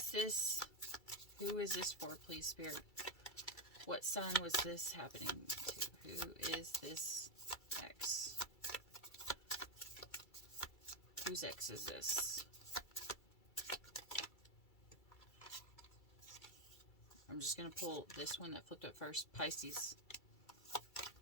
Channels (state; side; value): late; right; 2.3 ms